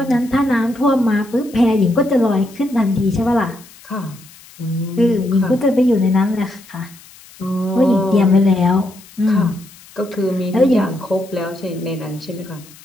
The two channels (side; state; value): left; noise; hiss, 23 dB below the sound